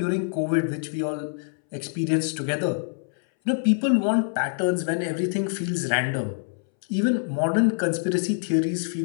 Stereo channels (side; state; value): right; silent; 62 dB below the other